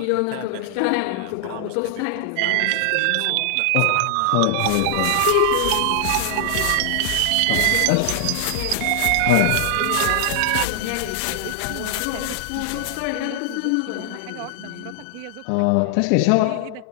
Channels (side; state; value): both; different; correlation 0.00